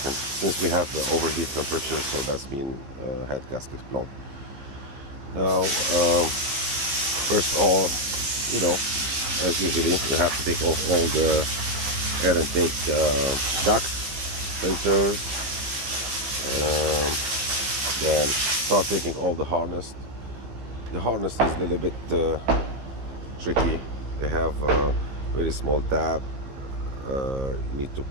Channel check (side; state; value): left; late; 15 ms